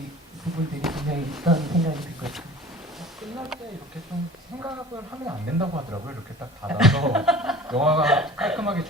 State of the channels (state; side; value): normal; both; correlation 0.42